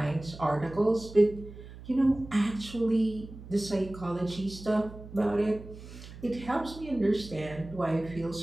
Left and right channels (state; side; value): noise; right; hum, 15 dB below the sound